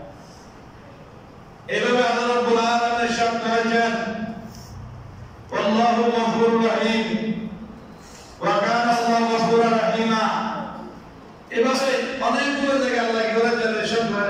এভাবে আল্লাহ রব্বুল আলামিন ইরশাদ করেছেন আল্লাহু গফুরুর রহিম ওয়া কানা আল্লাহু গফুরুর রহিমা এভাবে অনেকগুলো জায়গায় আল্লাহ কি করেছেন ইরশাদ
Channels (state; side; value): identical; both; correlation 1.00